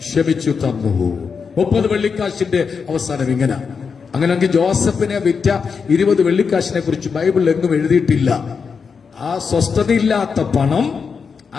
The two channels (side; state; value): right; quieter; 5.7 dB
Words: ക്ഷമിച്ചു തന്നു. 30 വെള്ളിക്കാശിന്റെ അവസാനം ഇങ്ങനെ. അങ്ങനെയെങ്കിൽ ജോസഫിനെ വിറ്റ 20 വെള്ളിക്കാശിനെ കുറിച്ച് ബൈബിളിൽ എങ്ങും എഴുതിയിട്ടില്ല. ആ സ്വസ്ഥതയില്ലാത്ത പണം,